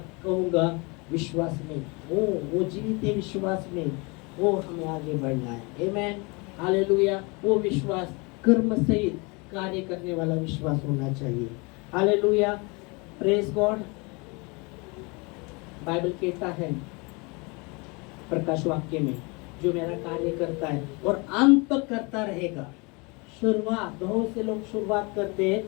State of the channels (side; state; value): right; quieter; 28.6 dB